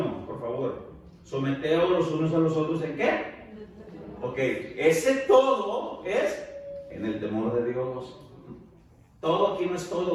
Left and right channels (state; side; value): identical; both; correlation 1.00